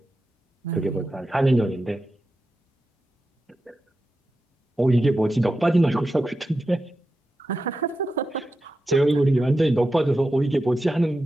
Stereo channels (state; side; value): normal; both; correlation 0.90